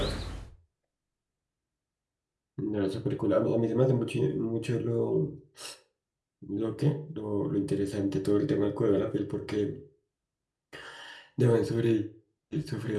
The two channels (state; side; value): identical; both; correlation 1.00